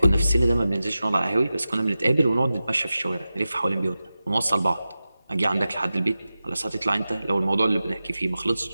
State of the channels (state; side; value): inverted; both; correlation -0.94